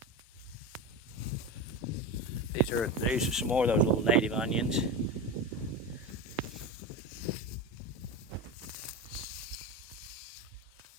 These are some more of those little native onions.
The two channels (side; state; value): both; normal; correlation 0.22